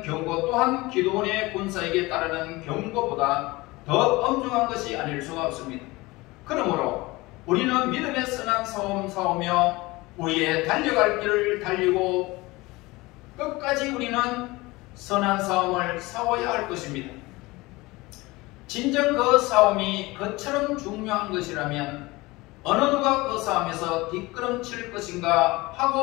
경고 또한 기도원의 군사에게 따르는 경고보다 더 엄중한 것이 아닐 수가 없습니다. 그러므로 우리는 믿음의 선한 싸움 싸우며 우리의 달려갈 길을 달리고 끝까지 우리는 선한 싸움을 싸워야 할 것입니다. 진정 그 싸움이 그처럼 중요한 것이라면 어느 누가 그 싸움에서 뒷걸음칠 것인가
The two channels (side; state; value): right; quieter; 21.7 dB